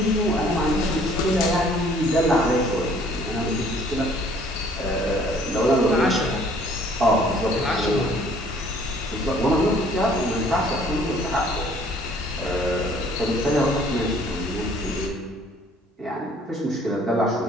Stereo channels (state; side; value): normal; both; correlation 0.58